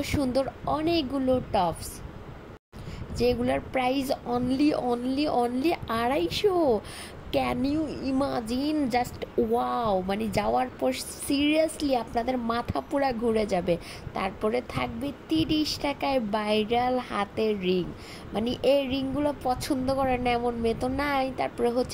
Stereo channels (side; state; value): both; identical; correlation 1.00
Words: সুন্দর অনেকগুলো টপস, যেগুলোর price only only only 250। Can you imagine? Just wow! মানে যাওয়ার পর সিরিয়াসলি আপনাদের মাথা পুরা ঘুরে যাবে। তারপরে থাকবে 30 টাকায় ভাইরাল হাতের রিং, মানে এই রিংগুলো পছন্দ করে না এমন মেয়ে তো নাই। তারপরে